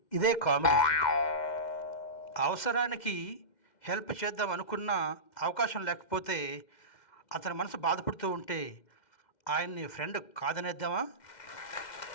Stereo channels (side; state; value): right; late; 2.1 ms